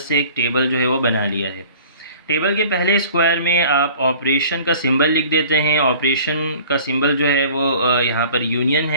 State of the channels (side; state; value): both; inverted; correlation -0.49